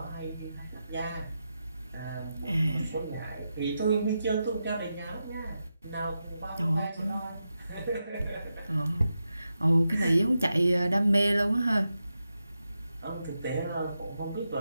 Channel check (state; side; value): inverted; both; correlation -0.88